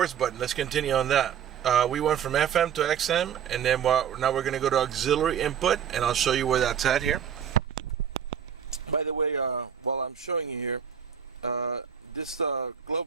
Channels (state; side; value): quieter; left; 8.4 dB